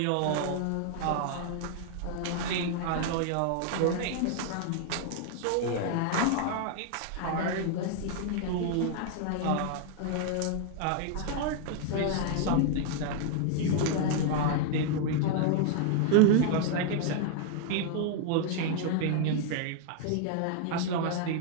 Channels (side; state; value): both; different; correlation 0.00